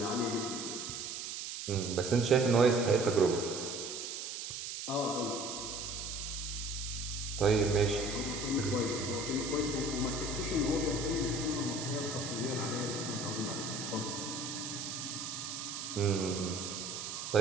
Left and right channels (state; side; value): noise; right; hiss, 6 dB below the sound